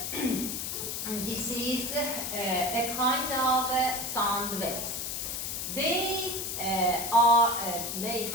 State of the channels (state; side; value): noise; left; hiss, 3 dB below the sound